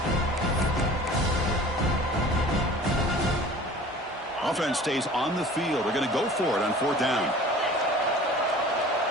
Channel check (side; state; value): both; normal; correlation 0.44